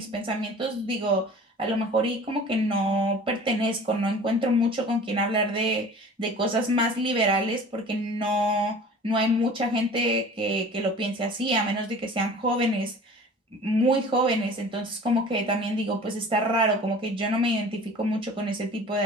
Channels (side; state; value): both; normal; correlation 0.43